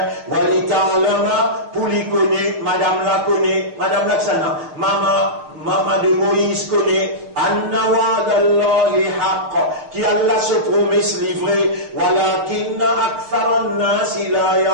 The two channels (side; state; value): left; late; 6.8 ms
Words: wali ta'lama, pour lui connaître, madame la connaît, madame Laksana, maman de Moïse connaît, anna wa'dallahi haqq, qui Allah se promesse livré, walakinna aktharan nasi la